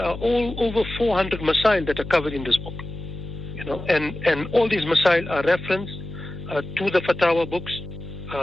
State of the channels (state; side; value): noise; left; hum, 10 dB below the sound